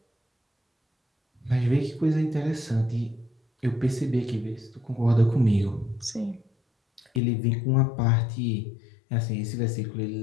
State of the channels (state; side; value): drops out; right; at 7.2 s